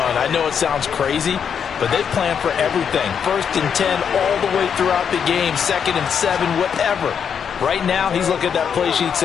I know it sounds crazy, but they plan for everything. 1st and 10 all the way throughout the game, 2nd and 7, whatever. Right now, he's looking at that play sheet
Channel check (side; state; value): right; quieter; 7.4 dB